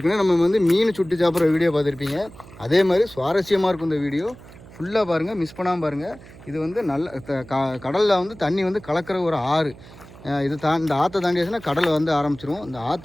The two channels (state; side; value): noise; right; hum, 20 dB below the sound